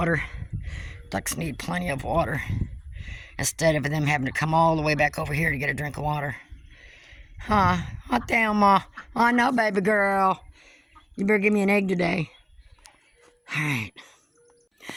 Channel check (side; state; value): both; identical; correlation 1.00